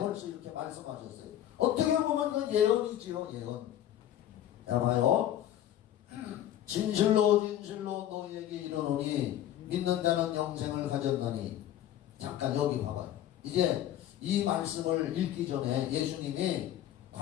이렇게 말씀하셨어요. 어떻게 보면 그 예언이지요. 예언. 자 봐요. 진실로 너희에게 이르노니 믿는 자는 영생을 가졌나니. 잠깐 여기 봐봐요. 이제 이 말씀을 읽기 전에 예수님이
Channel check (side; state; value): right; quieter; 11.8 dB